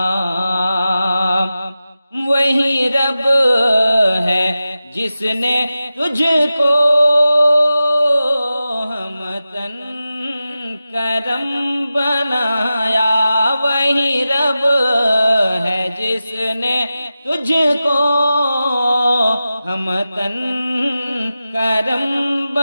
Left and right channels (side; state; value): both; inverted; correlation -0.93